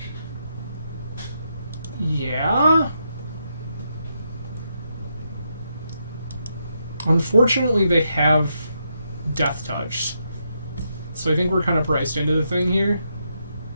Yeah. Unfortunately, they have Death Touch. So I think we're kind of priced into the thing here.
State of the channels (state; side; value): inverted; both; correlation -0.81